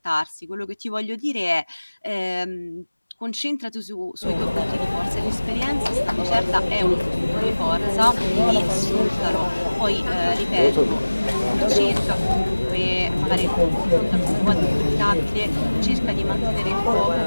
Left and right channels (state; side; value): inverted; both; correlation -1.00